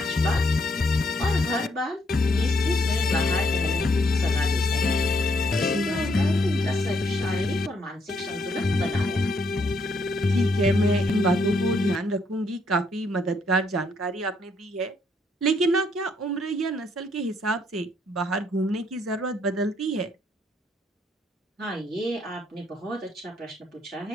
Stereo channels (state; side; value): normal; both; correlation 0.72